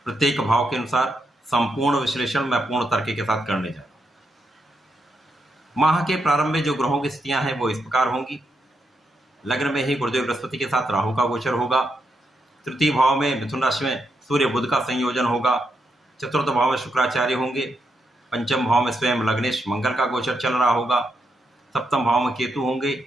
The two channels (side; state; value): both; normal; correlation 0.82